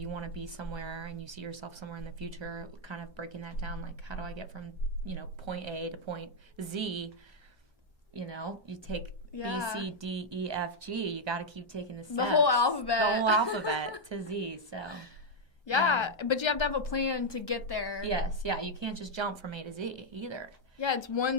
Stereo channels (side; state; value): both; normal; correlation 0.00